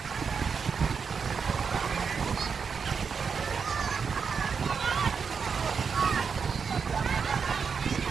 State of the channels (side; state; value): left; quieter; 5.9 dB